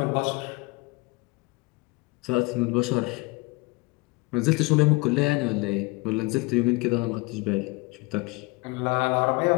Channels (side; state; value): right; quieter; 25.6 dB